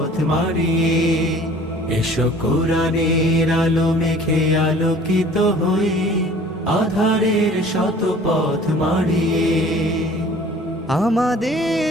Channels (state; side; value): normal; both; correlation 0.49